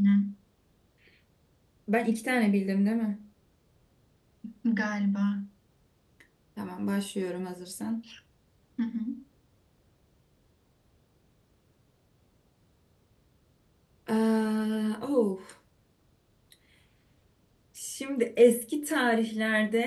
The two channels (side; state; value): both; identical; correlation 1.00